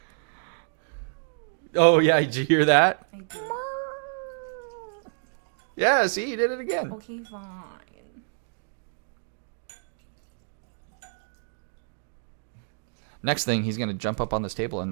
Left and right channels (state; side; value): silent; left; digital silence